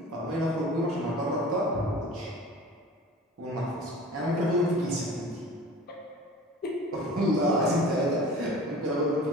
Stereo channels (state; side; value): normal; both; correlation 0.41